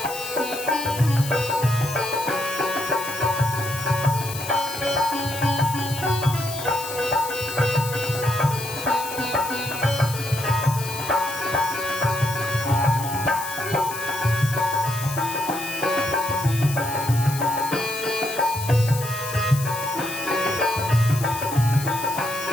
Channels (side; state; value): left; noise; hiss, 10 dB below the sound